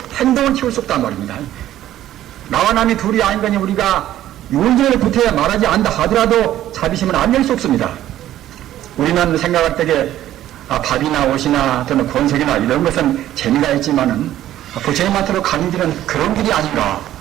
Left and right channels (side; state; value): left; quieter; 12.9 dB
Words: 행동을 키울 수 없단 말입니다. 나와 남이 둘이 아닌 거니 우리가 윤전을 붙어야 말하지 않다 하더라도 자비심은 안 낼 수 없습니다. 우리는 생각할 때에 밥이나 옷이나 또는 권색이나 이런 것은 재미가 있지만은 부처님한테로 가는 길은 그런 길이 아닌가